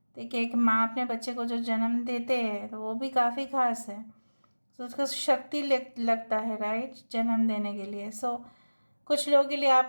देखिए एक माँ अपने बच्चे को जो जन्म देते हैं तो वो भी काफ़ी खास है। तो उसका शक्ति लगता है, राइट, जन्म देने के लिए। सो कुछ लोगों के लिए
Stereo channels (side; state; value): both; inverted; correlation -1.00